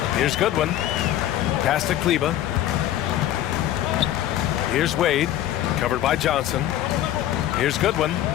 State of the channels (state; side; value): quieter; right; 12.6 dB